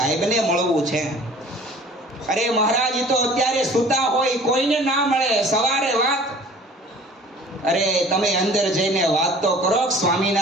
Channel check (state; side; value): normal; both; correlation 0.48